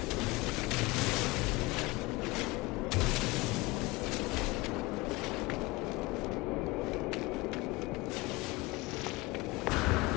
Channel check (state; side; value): quieter; right; 22.4 dB